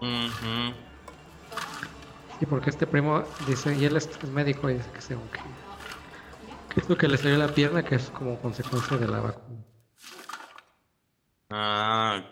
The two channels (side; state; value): both; identical; correlation 1.00